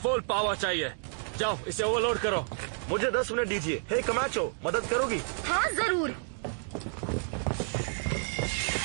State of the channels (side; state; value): left; silent; digital silence